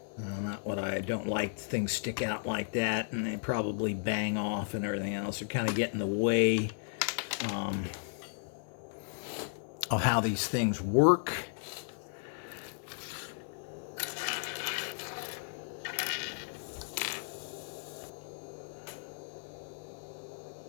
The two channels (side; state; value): right; silent; 55 dB below the other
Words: Not what I don't like. Things stick out like that, and they probably bang off and everything else. They're kind of get in the way of how these things work.